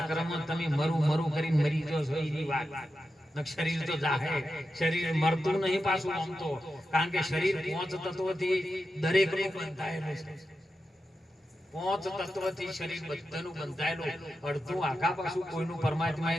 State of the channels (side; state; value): both; normal; correlation 0.90